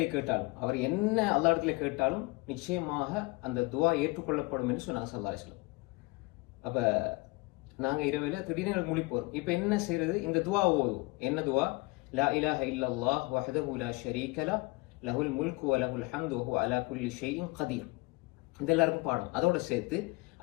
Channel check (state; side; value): quieter; right; 24.8 dB